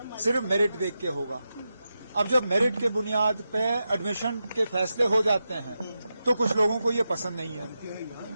सिर्फ मेरिट देख के होगा। अब जब मेरिट के बुनियाद पे एडमिशन के फैसले हो जाते हैं तो कुछ लोगों को ये पसंद नहीं है।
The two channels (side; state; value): both; inverted; correlation -0.90